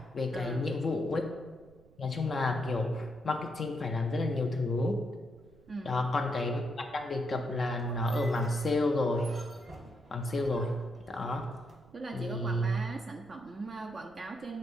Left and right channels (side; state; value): right; noise; rumble, 25 dB below the sound